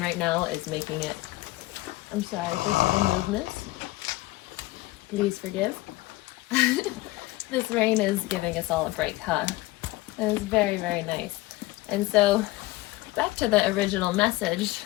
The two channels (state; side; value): quieter; right; 19.4 dB